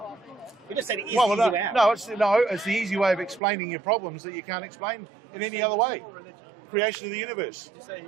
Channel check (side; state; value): left; drops out; at 3.4 s